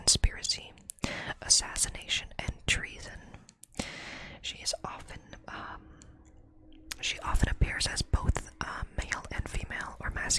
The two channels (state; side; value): identical; both; correlation 1.00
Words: assassination, and treason. She often appears as both male and female, or